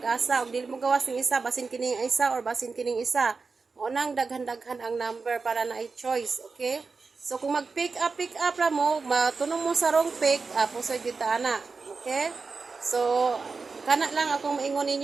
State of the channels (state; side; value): quieter; left; 4.5 dB